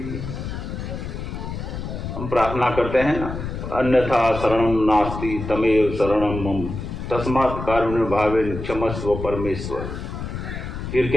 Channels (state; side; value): noise; left; rumble, 7 dB below the sound